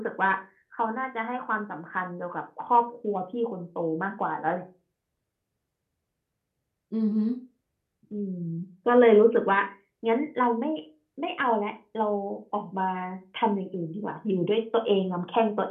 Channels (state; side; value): identical; both; correlation 1.00